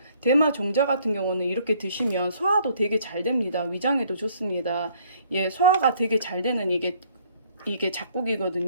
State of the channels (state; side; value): inverted; both; correlation -0.61